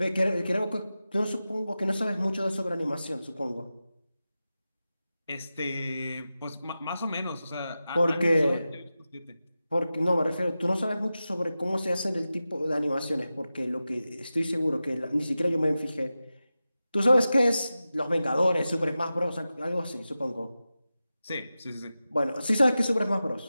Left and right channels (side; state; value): both; inverted; correlation -0.93